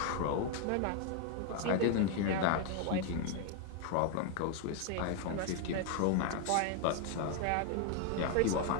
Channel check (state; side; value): different; both; correlation 0.01